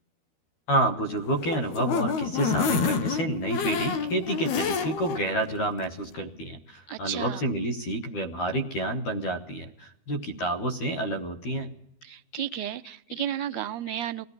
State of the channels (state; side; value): late; right; 13 ms